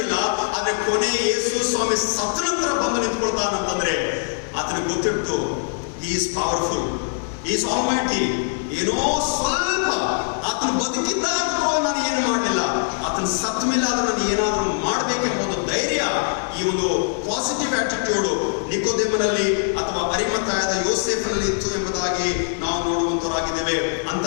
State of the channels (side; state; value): right; silent; digital silence